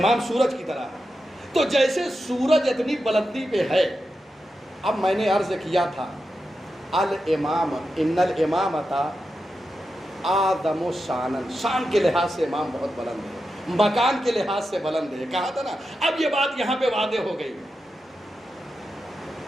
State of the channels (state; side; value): normal; both; correlation 0.89